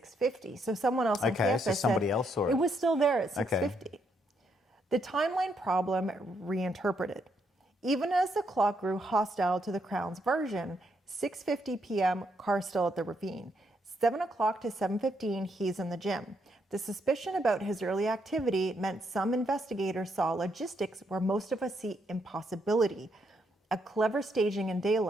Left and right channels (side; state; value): both; normal; correlation 0.76